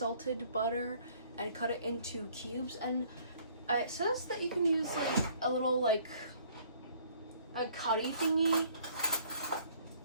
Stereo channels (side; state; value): both; inverted; correlation -0.59